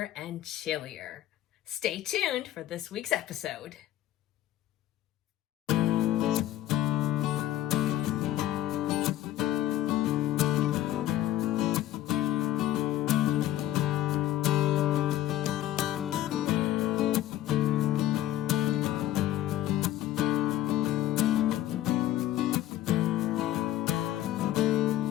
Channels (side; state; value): right; quieter; 13.4 dB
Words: and chillier. Stay tuned for this week's episode.